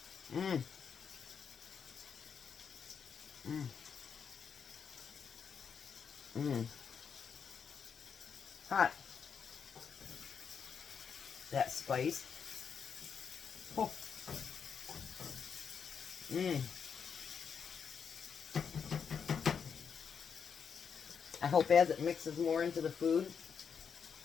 Mmm. Mmm. Mmm. Hot. That spice. Oh. Mmm. I hope as it mixes more into the food.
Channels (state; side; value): quieter; right; 6.7 dB